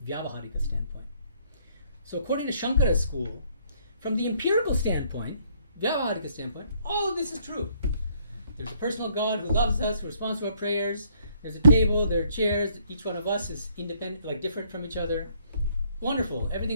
Vyavaharika standpoint. So according to Shankara's school, from the empirical standpoint, Vyavaharika standpoint, all of this is true. There's a personal God who loves us, who responds to our prayers. There's a table, there are chairs. Each one of us is independent, like different from each other. Wonderful.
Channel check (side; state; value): both; inverted; correlation -0.66